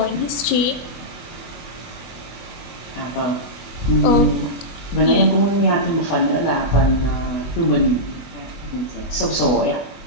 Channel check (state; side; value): late; right; 24 ms